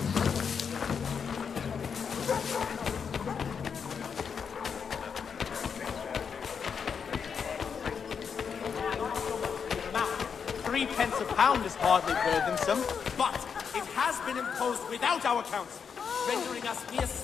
£3 a pound is hardly burdensome, but it has been imposed without our counsel, rendering us mere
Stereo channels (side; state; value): right; quieter; 6.5 dB